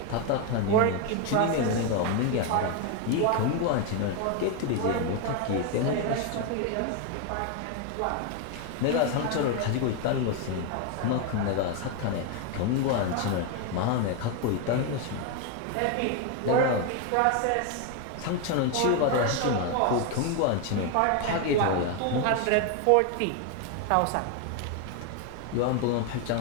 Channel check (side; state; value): both; different; correlation 0.01